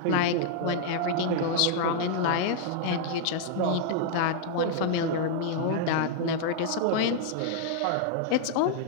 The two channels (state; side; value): different; both; correlation -0.01